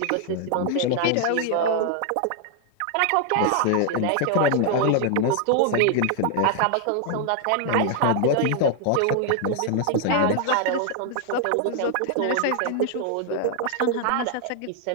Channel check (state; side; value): different; both; correlation 0.00